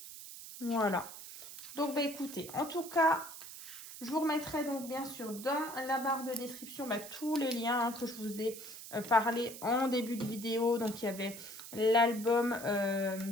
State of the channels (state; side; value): noise; right; hiss, 12 dB below the sound